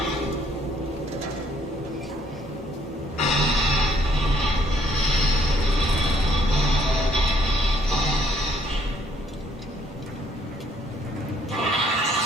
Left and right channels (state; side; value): normal; both; correlation 0.66